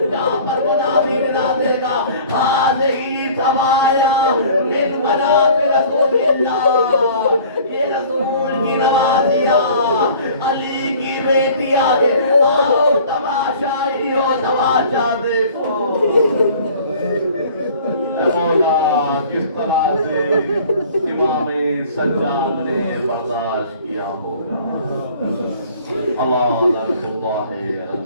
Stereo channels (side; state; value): both; inverted; correlation -0.48